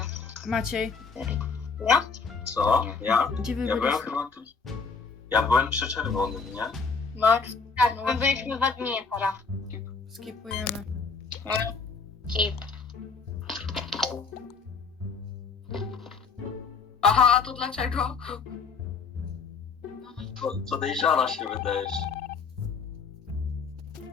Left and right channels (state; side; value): quieter; right; 5.0 dB